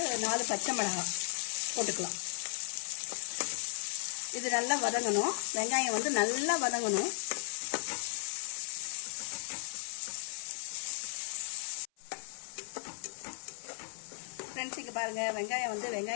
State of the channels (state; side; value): silent; right; 54 dB below the other